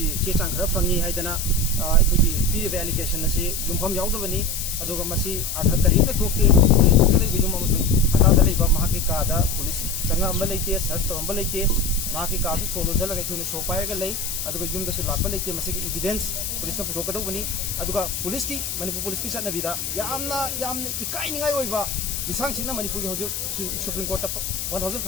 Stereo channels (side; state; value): left; noise; hiss, 4 dB below the sound